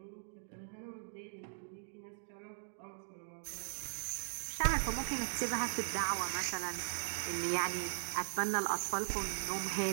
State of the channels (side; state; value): left; silent; digital silence